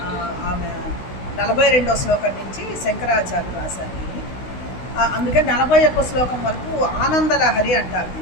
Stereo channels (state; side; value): late; right; 16 ms